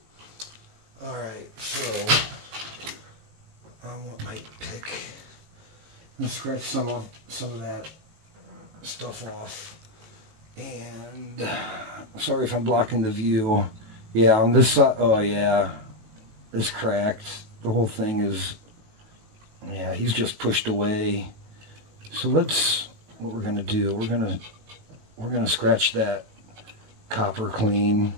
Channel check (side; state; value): left; late; 18 ms